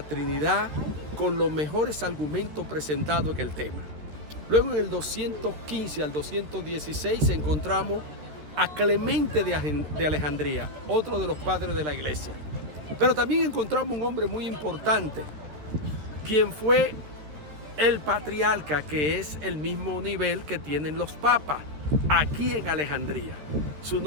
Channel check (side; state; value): left; late; 13 ms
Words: con los mejores argumentos presentados en el tema. Luego en el 215 al 216 encontramos a Clemente de Alejandría, otro de los padres de la iglesia. Pero también encontramos un hombre muy importante, quien fue el patriarca, que es el mismo nivel que tienen los papas aquí en Alejandría. Su